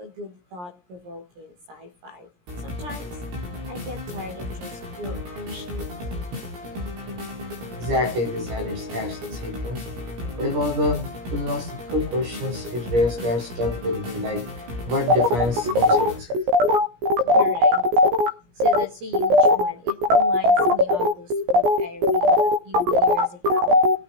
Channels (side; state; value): left; late; 17 ms